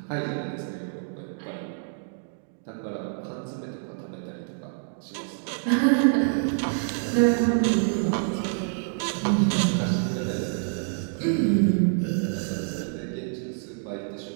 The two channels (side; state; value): left; silent; digital silence